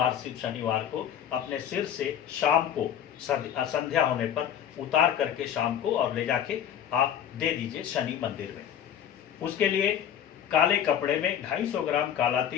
सिर्फ शनिवार को अपने सिर से शाम को संध्या होने पर उतार करके शाम को और ले जाके आप दे दीजिए शनि मंदिर में। उसके लिए काले कपड़े में 250 ग्राम काला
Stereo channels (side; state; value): right; quieter; 9.6 dB